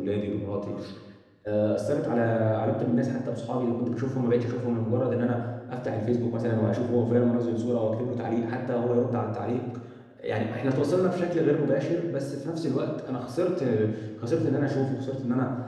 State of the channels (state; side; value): identical; both; correlation 1.00